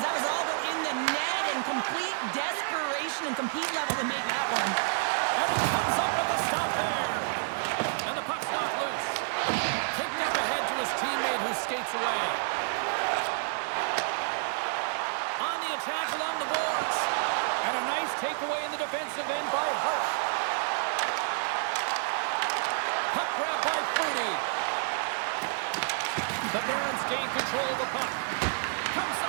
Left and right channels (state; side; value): silent; left; digital silence